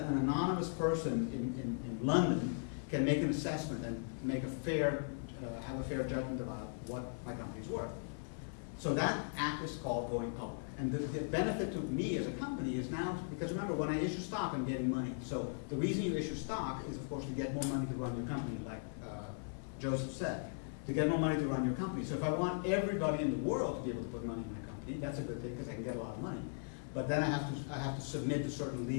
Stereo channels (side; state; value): right; silent; 52 dB below the other